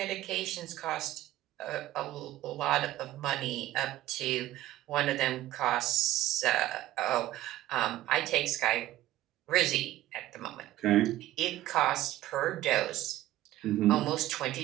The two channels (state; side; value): quieter; left; 14.9 dB